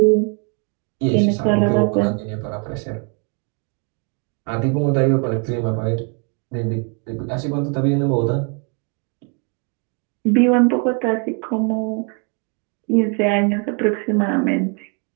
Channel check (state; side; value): quieter; left; 35.3 dB